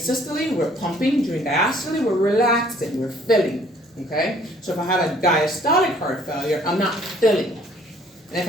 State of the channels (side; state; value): both; normal; correlation 0.59